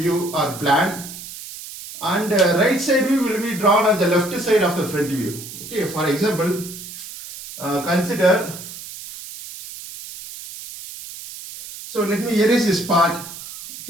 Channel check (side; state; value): right; noise; hiss, 13 dB below the sound